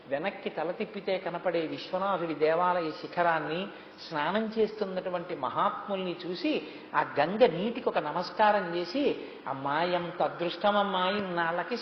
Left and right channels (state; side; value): identical; both; correlation 1.00